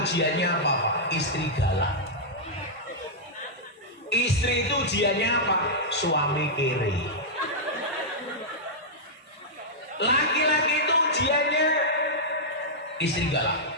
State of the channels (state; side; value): normal; both; correlation -0.09